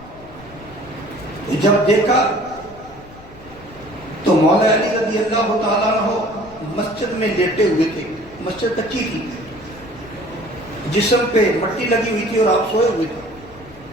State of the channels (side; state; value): left; noise; rumble, 21 dB below the sound